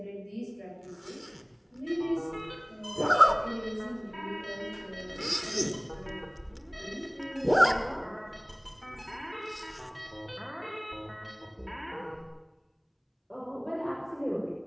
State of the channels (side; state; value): both; identical; correlation 1.00